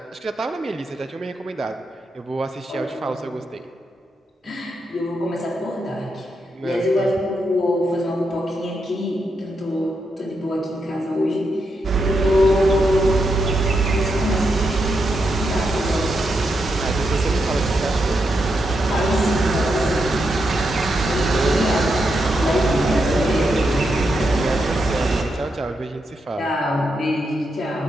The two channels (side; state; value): both; normal; correlation 0.83